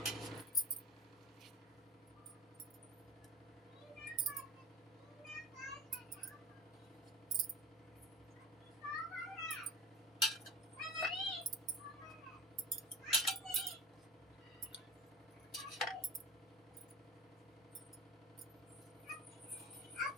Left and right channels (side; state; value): both; normal; correlation 0.32